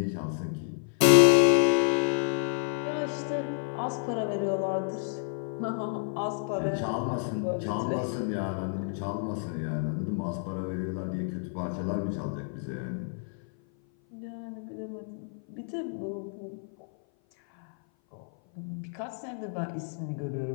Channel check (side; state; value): right; silent; 56 dB below the other